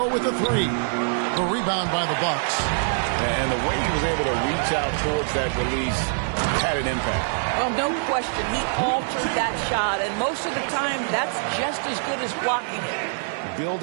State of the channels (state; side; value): silent; left; digital silence